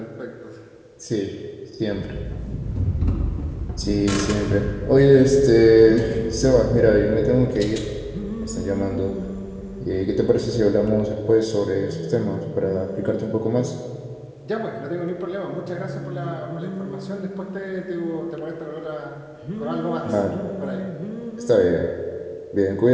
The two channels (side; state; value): both; identical; correlation 1.00